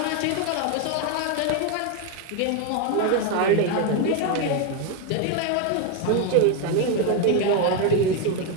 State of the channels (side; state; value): both; different; correlation 0.02